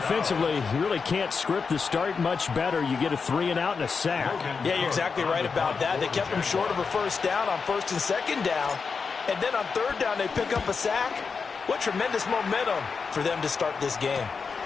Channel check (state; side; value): quieter; right; 5.2 dB